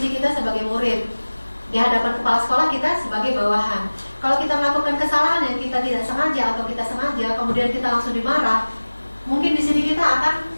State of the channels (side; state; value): both; inverted; correlation -1.00